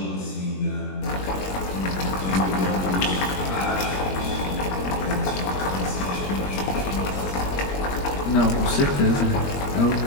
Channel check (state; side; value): late; right; 21 ms